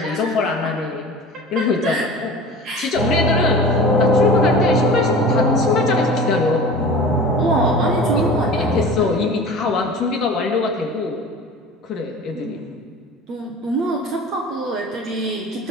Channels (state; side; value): normal; both; correlation 0.38